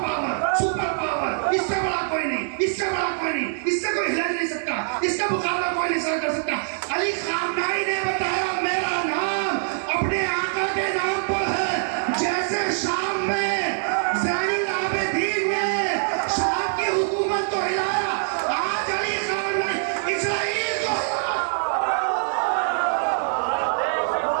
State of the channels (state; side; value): silent; left; digital silence